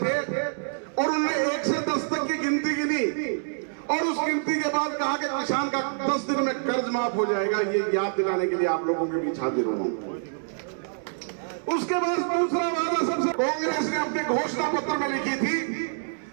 और उन्होंने 1 से 10 तक की गिनती गिनी और उस गिनती के बाद कहा कि किसान का 10 दिन में कर्ज माफ हो जाएगा। ये याद दिलाने के लिए आप लोगों के बीच हाजिर हूं। उसके बाद दूसरा वादा सबसे कांग्रेस ने अपने घोषणा पत्र में लिखी थी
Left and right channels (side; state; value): left; silent; digital silence